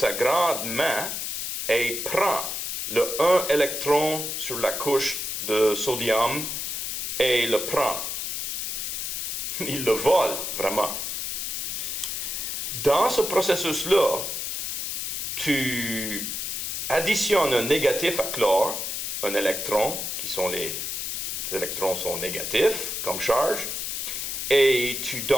grande main et prend le 1 électron sur la couche de sodium et le prend. Il le vole, vraiment. Dans ce processus-là, tu additionnes un négatif à chlore, un électron, les électrons sont négatifs comme charge, et tu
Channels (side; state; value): left; noise; hiss, 3 dB below the sound